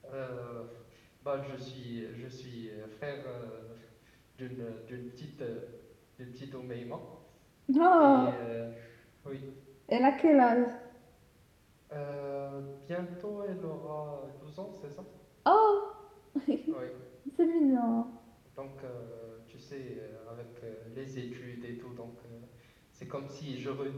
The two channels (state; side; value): identical; both; correlation 1.00